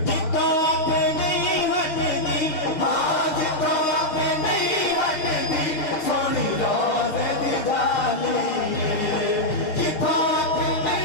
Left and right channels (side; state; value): right; late; 6.4 ms